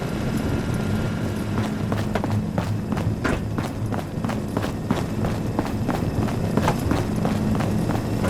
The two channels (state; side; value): identical; both; correlation 1.00